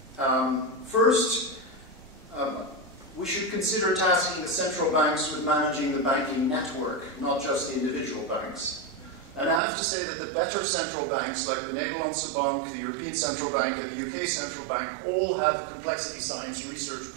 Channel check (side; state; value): left; drops out; at 9.6 s